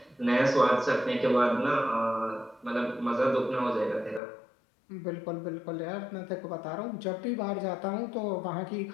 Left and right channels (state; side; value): drops out; right; at 4.2 s